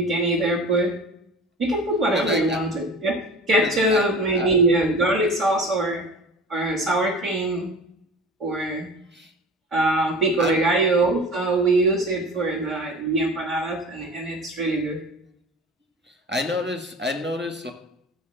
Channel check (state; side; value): normal; both; correlation 0.37